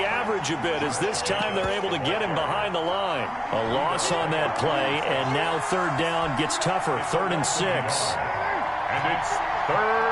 average a bit as this time they're able to get him behind the line. A loss on that play, and now 3rd down gets tougher. 3rd and 6. And it's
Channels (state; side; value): identical; both; correlation 1.00